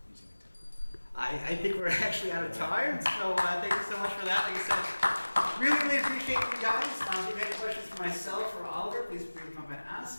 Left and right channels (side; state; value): both; inverted; correlation -1.00